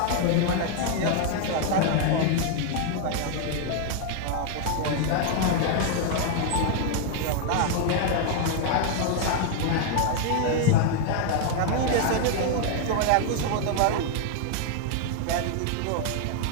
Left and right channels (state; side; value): different; both; correlation 0.00